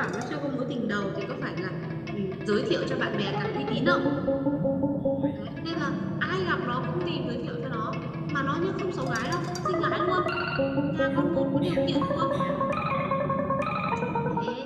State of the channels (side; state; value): both; identical; correlation 1.00